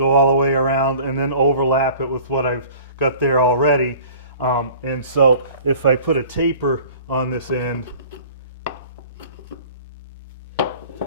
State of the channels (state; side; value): inverted; both; correlation -0.46